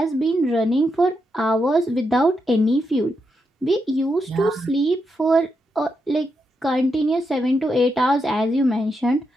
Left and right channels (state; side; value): normal; both; correlation 0.83